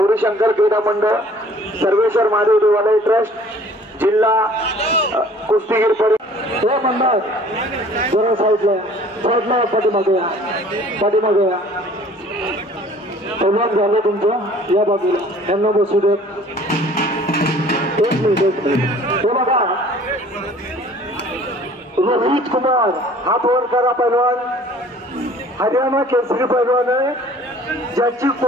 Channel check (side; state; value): both; normal; correlation 0.52